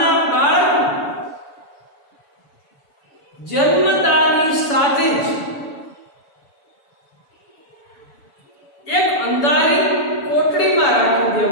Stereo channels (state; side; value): late; right; 7.0 ms